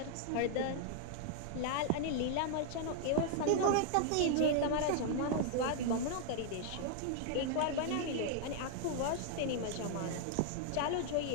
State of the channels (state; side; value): different; both; correlation -0.01